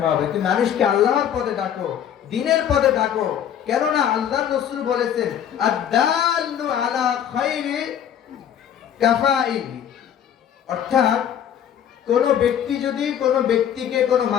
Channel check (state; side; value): quieter; right; 9.4 dB